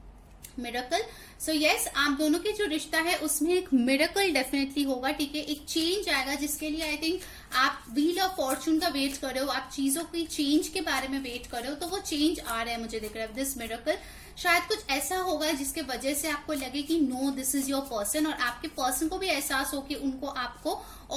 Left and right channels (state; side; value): identical; both; correlation 1.00